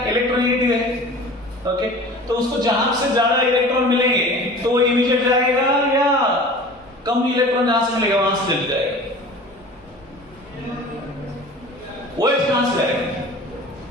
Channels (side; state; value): both; normal; correlation 0.41